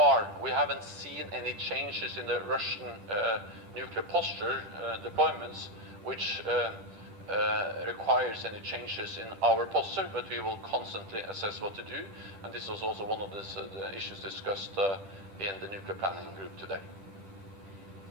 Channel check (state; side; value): late; left; 10 ms